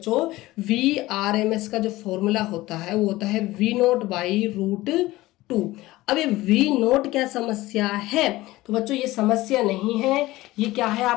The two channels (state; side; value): quieter; right; 18.2 dB